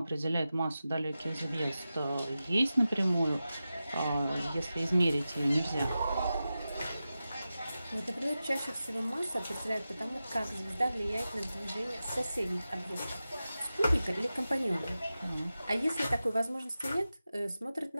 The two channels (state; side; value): inverted; both; correlation -0.93